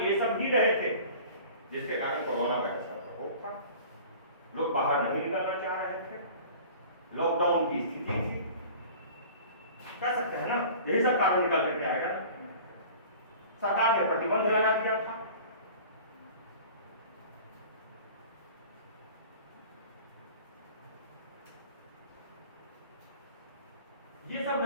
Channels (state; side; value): inverted; both; correlation -0.43